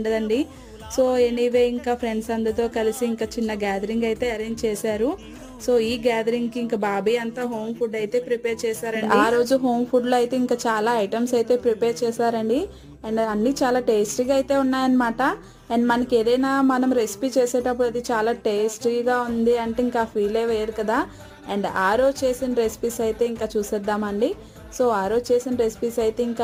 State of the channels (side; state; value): both; identical; correlation 1.00